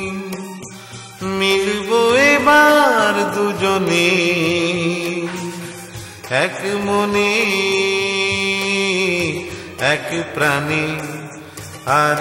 মিলবো এবার দুজনে এক মনে এক প্রাণে। আর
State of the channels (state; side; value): identical; both; correlation 1.00